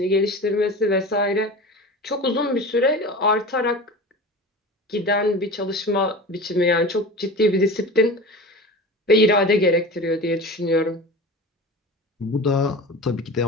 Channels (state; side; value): normal; both; correlation 0.33